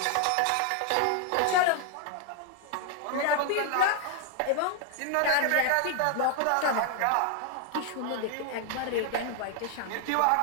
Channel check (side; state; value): both; different; correlation 0.00